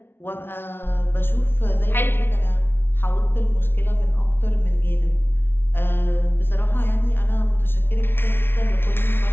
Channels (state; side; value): late; right; 0.11 ms